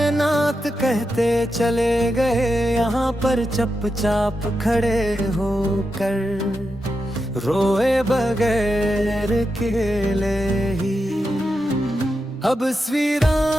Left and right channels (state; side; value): normal; both; correlation 0.87